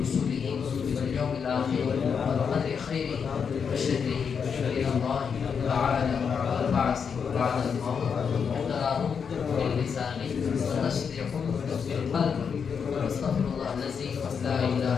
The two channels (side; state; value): right; quieter; 6.5 dB